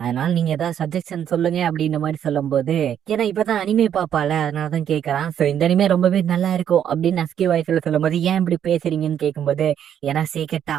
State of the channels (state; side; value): quieter; left; 9.5 dB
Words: நீங்க ஏதாவது சஜஷன் சொல்லுங்க அப்படின்ற மாதிரி சொல்லும் போது ஏன்னா இப்பதான் அனிமே பாப்பால அதனாலதான் கேட்கறான். சோ இந்த அனிமே ரொம்பவே நல்லா இருக்கும் அப்படின்னு நஸ்கி வாய்ஸ்ல சொல்லும் போது ஏன் இப்படி பேசுறீங்கன்னு கேட்கும்போது ஏன்னா சீக்கிரட்